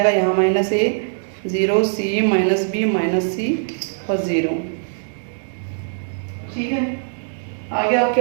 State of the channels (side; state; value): left; silent; digital silence